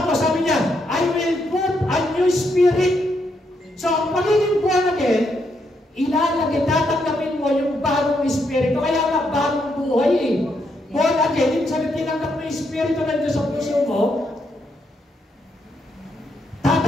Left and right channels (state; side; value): normal; both; correlation 0.78